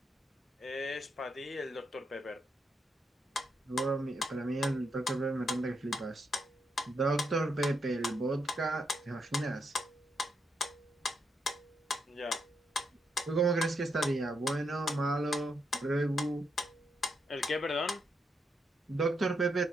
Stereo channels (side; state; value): both; normal; correlation 0.80